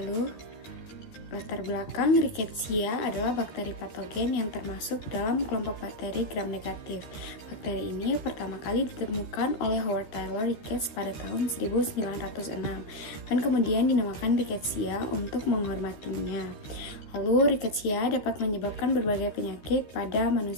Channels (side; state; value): right; late; 13 ms